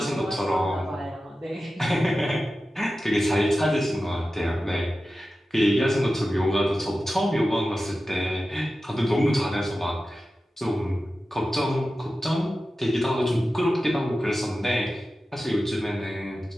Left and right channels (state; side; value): normal; both; correlation 0.94